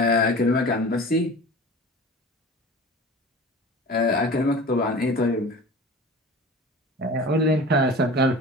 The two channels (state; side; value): normal; both; correlation 0.37